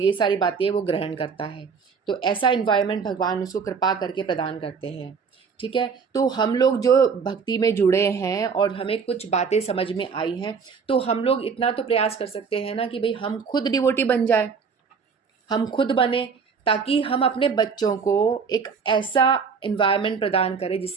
सारी बातें वो ग्रहण करता है। तो ऐसा इन्वायरमेंट भगवान उसको कृपा करके प्रदान करते हैं। ठीक है, तो हम लोग जो भक्ति में जुड़े हैं और हमें कुछ बातें समझ में आई हैं, तो हम लोग इतना तो प्रयास कर सकते हैं ना कि भाई हम खुद डिवोटी बन जाए, हम खुद बने, ताकि हम अपने बच्चों को एक ऐसा इन्वायरमेंट प्रदान करें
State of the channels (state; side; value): quieter; left; 5.7 dB